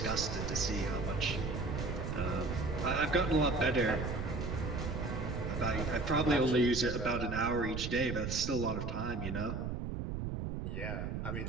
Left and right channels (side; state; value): right; noise; rumble, 3 dB below the sound